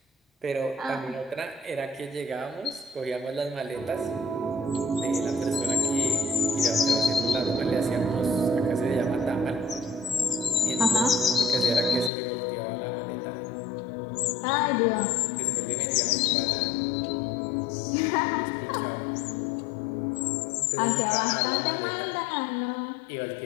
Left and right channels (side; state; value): right; drops out; at 12.1 s